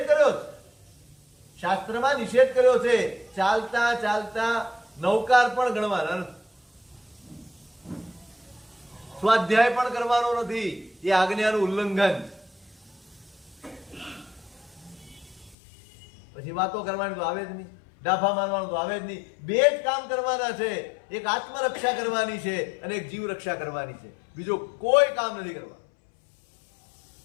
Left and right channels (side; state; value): right; drops out; at 15.6 s